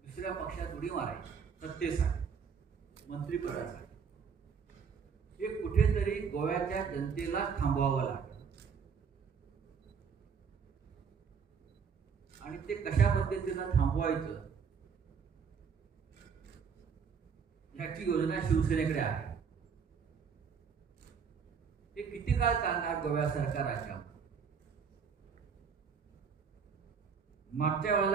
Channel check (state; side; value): quieter; left; 6.4 dB